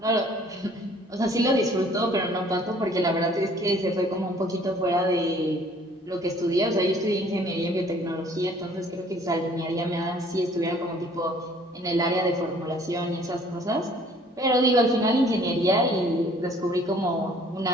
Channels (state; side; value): normal; both; correlation 0.56